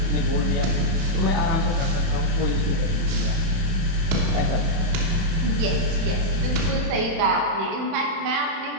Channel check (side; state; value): left; late; 31 ms